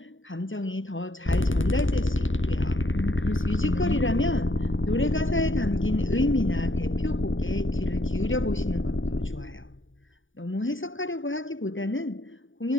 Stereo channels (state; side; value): late; right; 0.57 ms